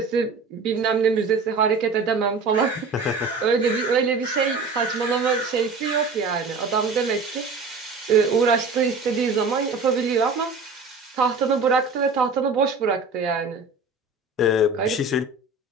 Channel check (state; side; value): quieter; left; 3.9 dB